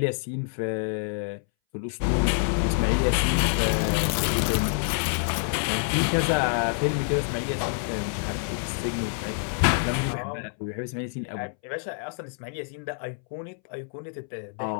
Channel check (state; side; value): silent; right; 60 dB below the other